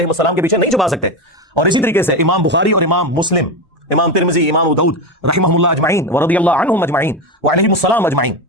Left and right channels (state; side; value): normal; both; correlation 0.16